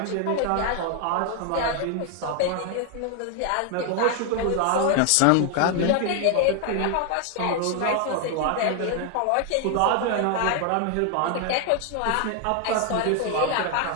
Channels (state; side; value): different; both; correlation 0.00